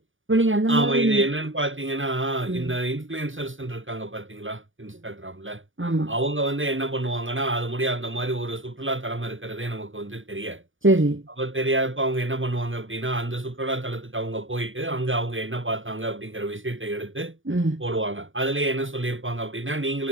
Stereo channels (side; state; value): left; late; 0.57 ms